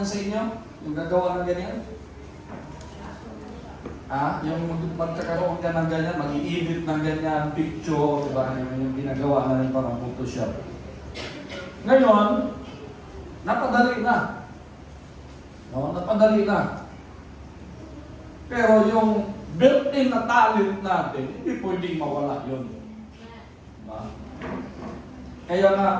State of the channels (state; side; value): identical; both; correlation 1.00